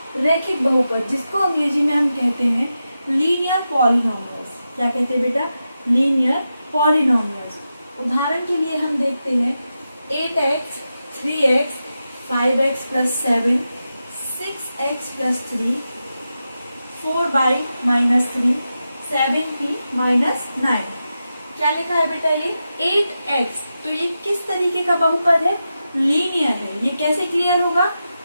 रैखिक बहुपद, जिसको अंग्रेजी में हम कहते हैं लीनियर पॉलिनोमियल्स। क्या कहते हैं बेटा? Linear polynomials. उदाहरण के लिए हम देखते हैं 8x, 3x, 5x plus 7, 6x plus 3, 4y minus 3, 7p minus 9। क्या लिखा है बेटा? ये 8x। तो ये किस तरीके का बहुपद है? लीनियर है। ये कैसे क्लियर होगा?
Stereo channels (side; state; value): both; inverted; correlation -0.90